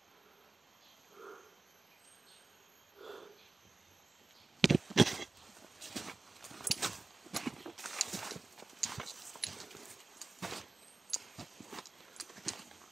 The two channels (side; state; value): left; quieter; 3.5 dB